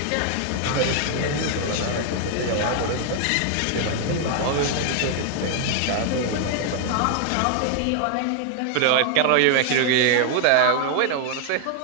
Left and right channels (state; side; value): different; both; correlation 0.00